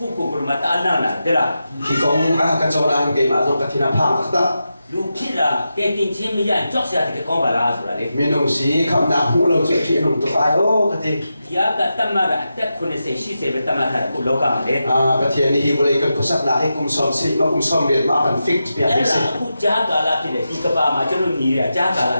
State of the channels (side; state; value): both; inverted; correlation -0.90